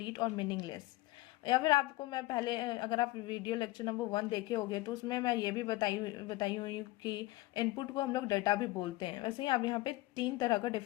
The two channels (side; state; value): right; quieter; 19.3 dB